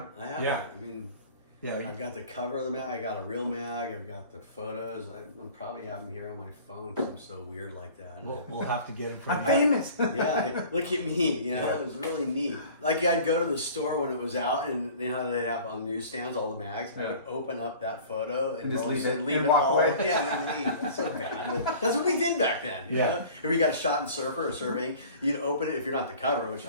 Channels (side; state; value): both; inverted; correlation -0.45